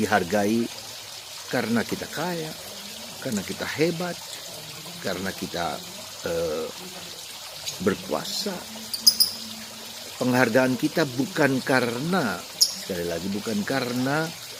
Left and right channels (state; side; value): identical; both; correlation 1.00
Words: karena kita kaya, karena kita hebat, karena kita berkuasa. Penghargaan kita bukan karena, sekali lagi, bukan karena